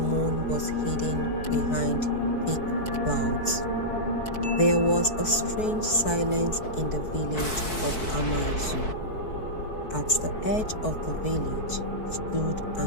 moon was hidden behind thick clouds, there was a strange silence in the village of Amaizu. At the edge of the village stood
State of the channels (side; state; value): right; late; 4.6 ms